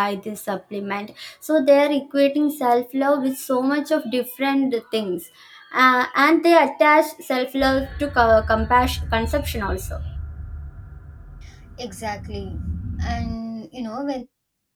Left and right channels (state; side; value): identical; both; correlation 1.00